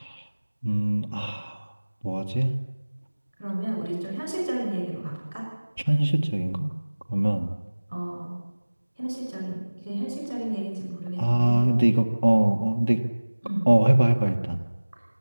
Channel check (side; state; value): both; inverted; correlation -1.00